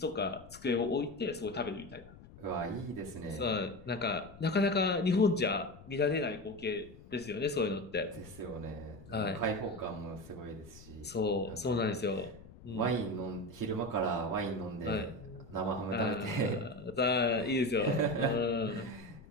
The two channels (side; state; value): left; noise; rumble, 19 dB below the sound